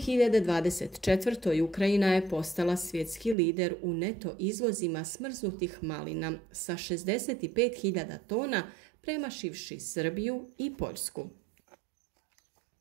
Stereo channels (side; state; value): left; drops out; at 3.4 s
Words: Ukrajina je postala svjetski lider u neto izvozima smrznutih malina sa 65.000 tona, premašivši Srbiju i Poljsku.